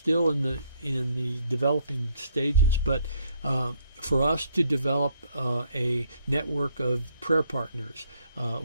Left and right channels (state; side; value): inverted; both; correlation -0.68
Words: in the developing stages, but for us to develop a network of prayer partners